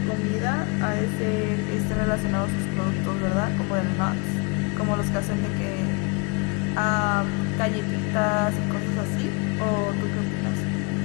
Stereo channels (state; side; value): quieter; right; 31.1 dB